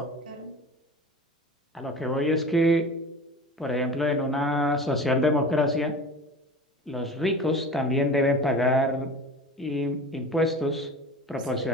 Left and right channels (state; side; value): normal; both; correlation 0.36